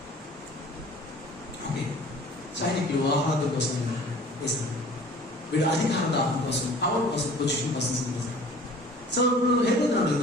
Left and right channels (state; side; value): normal; both; correlation 0.47